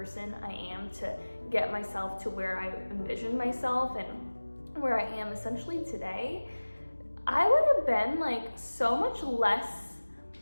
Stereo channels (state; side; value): inverted; both; correlation -1.00